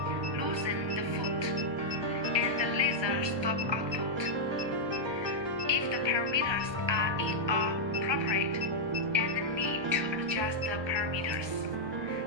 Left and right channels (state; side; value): late; left; 1.2 ms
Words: Loosen the foot, and the laser stop output. If the parameters are inappropriate and need to adjust the parameters,